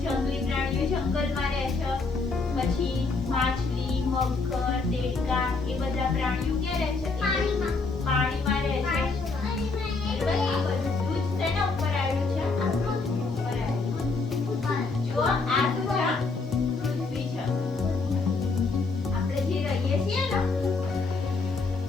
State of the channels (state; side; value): quieter; right; 4.0 dB